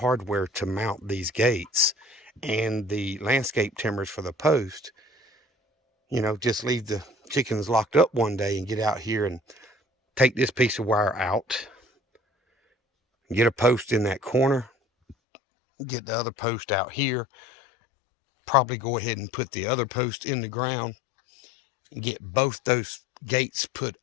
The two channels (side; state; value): right; drops out; at 15.2 s